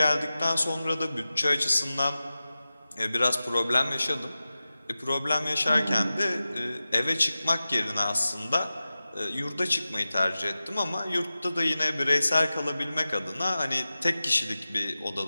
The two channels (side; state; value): both; inverted; correlation -0.95